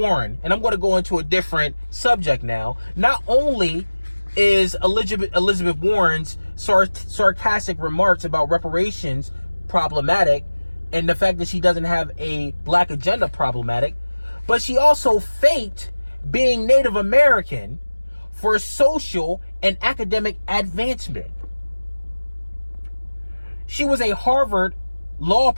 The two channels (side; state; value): both; inverted; correlation -1.00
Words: and I'm going to go into a different subject now, not only is Elizabeth Warren's sarcastic remarks about reparations problematic, and the fact that she doesn't have a black agenda problematic, but she also faked being Native American for social and academic advancement. She was a Harvard law